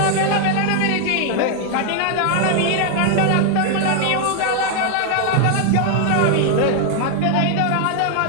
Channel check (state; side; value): different; both; correlation 0.00